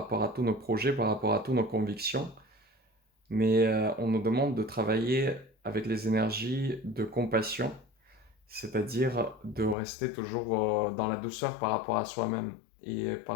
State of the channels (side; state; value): right; drops out; at 9.8 s